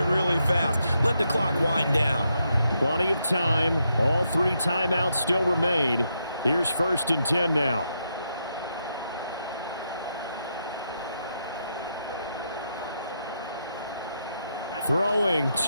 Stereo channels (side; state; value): both; inverted; correlation -0.81